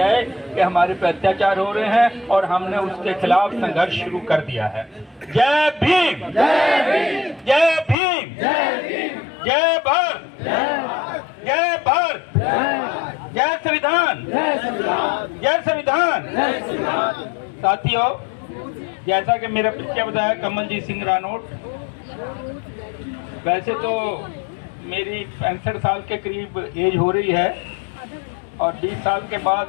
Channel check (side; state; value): right; drops out; at 8.0 s